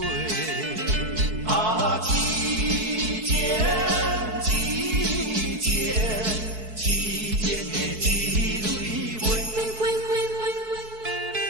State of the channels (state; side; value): late; left; 4.6 ms